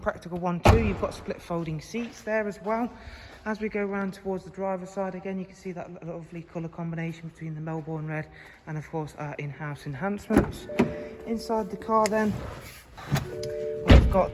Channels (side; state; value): both; identical; correlation 1.00